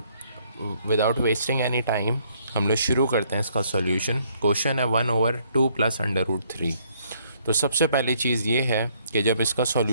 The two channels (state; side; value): inverted; both; correlation -0.67